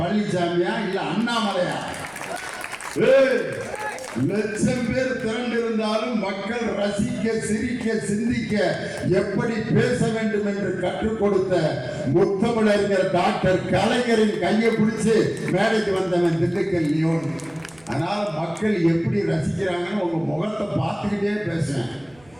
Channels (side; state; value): right; noise; rumble, 29 dB below the sound